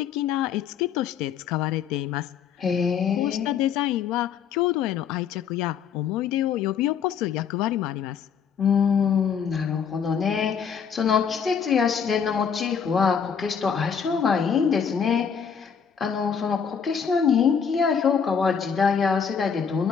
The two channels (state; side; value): quieter; right; 7.1 dB